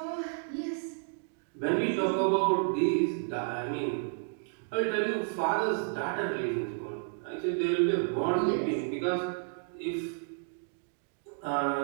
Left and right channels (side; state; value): left; silent; digital silence